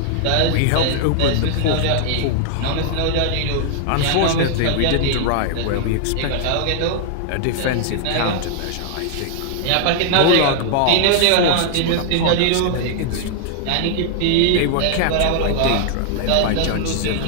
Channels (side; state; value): both; different; correlation 0.00